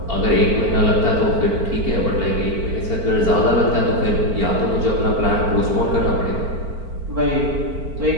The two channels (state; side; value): late; left; 4.5 ms